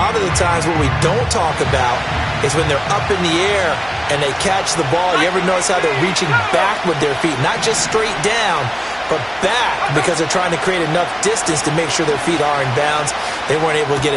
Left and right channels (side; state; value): left; noise; hum, 25 dB below the sound